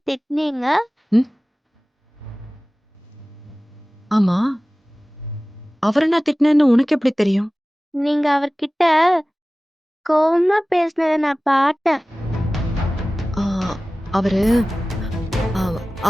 திட்டினீங்க? ஆமா, அவரை நான் திட்டினேன்னு உனக்கு எப்படி தெரியும்? நீங்க அவர்கிட்ட கோவமா பேசினதை நான் பார்த்தேன். அவரு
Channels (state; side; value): normal; both; correlation 0.97